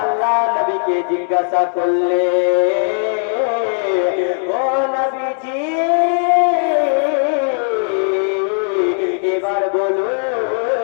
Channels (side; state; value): right; silent; digital silence